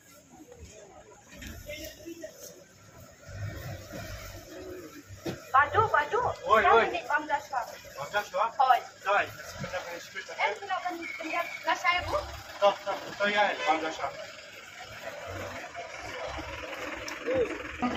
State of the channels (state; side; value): identical; both; correlation 1.00